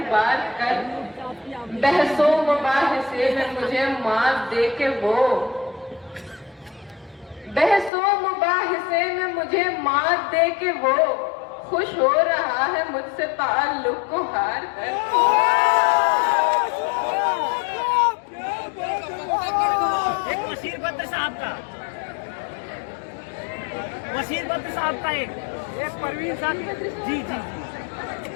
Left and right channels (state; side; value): drops out; right; at 7.9 s